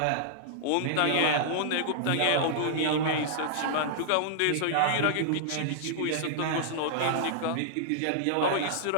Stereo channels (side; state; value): both; different; correlation -0.01